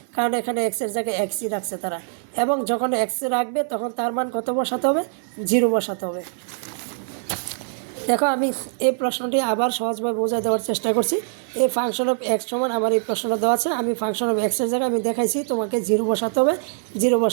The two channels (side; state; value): left; silent; 59 dB below the other